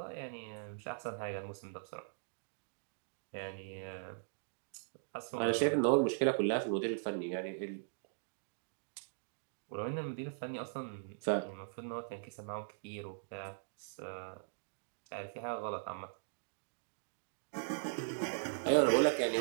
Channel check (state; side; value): silent; left; digital silence